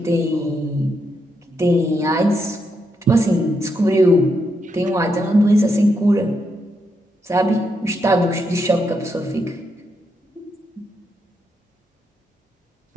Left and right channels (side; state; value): both; normal; correlation 0.81